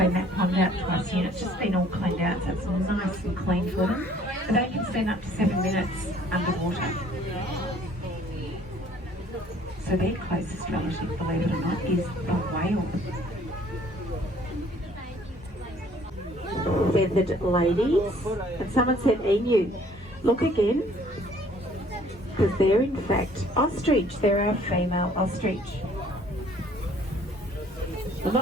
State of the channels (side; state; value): both; normal; correlation 0.58